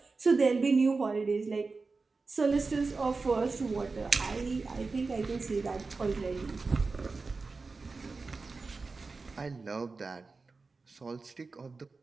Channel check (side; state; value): left; quieter; 4.1 dB